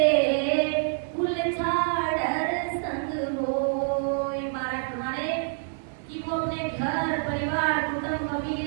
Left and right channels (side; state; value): left; silent; 60 dB below the other